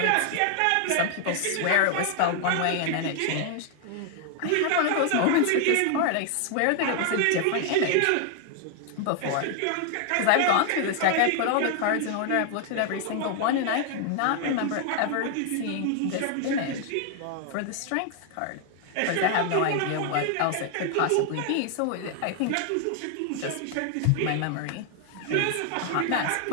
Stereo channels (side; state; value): both; different; correlation 0.00